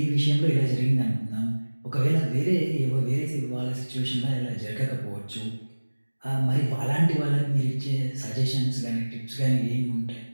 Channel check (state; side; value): inverted; both; correlation -1.00